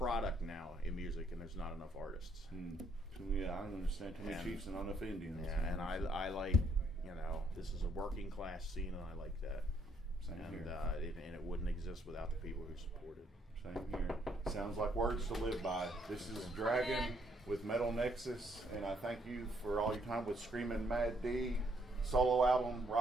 now in music, and there's not enough artists. Yeah, I understand. Too many Chiefs and not enough Indians. Yeah, and I like, you know, this is a working class scene, and I like that. Same here. And it wouldn't exist without the people who support it. Same here. Sounds like words to live by. This is Dragon with Metal Nexus, and I thank you for all your time with Screaming Mad D. Solo album,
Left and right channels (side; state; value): both; normal; correlation 0.70